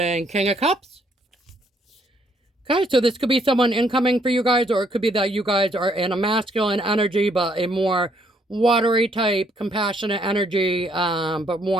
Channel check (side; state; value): both; normal; correlation 0.69